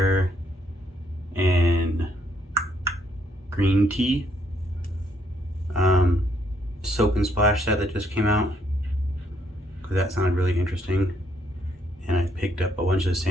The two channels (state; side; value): normal; both; correlation 0.71